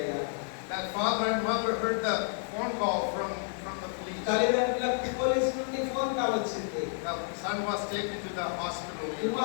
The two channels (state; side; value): silent; right; 57 dB below the other